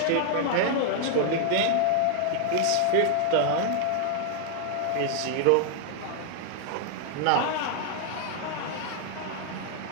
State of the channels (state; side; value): different; both; correlation 0.00